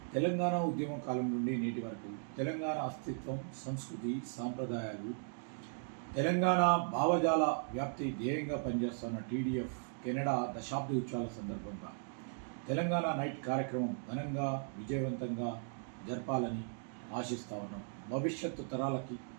తెలంగాణ ఉద్యమ కాలం నుండి నేటి వరకు తెలంగాణ అస్తిత్వం, సంస్కృతి, సాంప్రదాయాలు, తెలంగాణ భావజాల వ్యాప్తి ధ్యేయంగా పనిచేస్తున్న టీడీఎఫ్ కెనడా దశాబ్ది ఉత్సవాల సందర్భంగా తెలంగాణ నైట్ కార్యక్రమం ఘనంగా విజయవంతంగా జరపాలని ఆశిస్తూ ఉన్నాం. భవిష్యత్తు తరాలకి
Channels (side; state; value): left; silent; digital silence